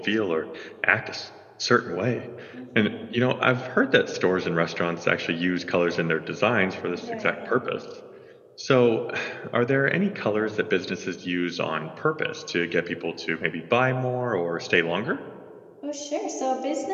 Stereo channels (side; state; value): both; identical; correlation 1.00